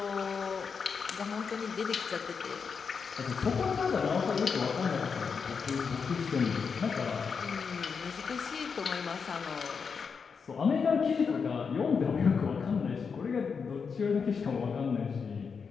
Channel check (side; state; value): right; quieter; 5.8 dB